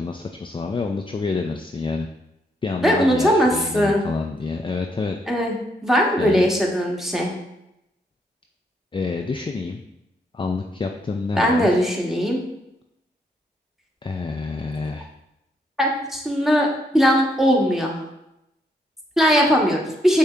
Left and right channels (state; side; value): normal; both; correlation 0.74